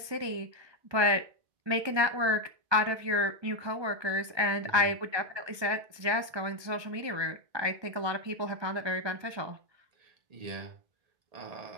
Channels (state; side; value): late; left; 1.3 ms